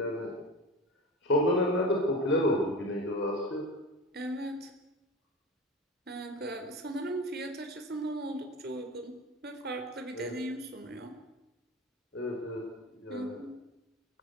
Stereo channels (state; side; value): normal; both; correlation 0.30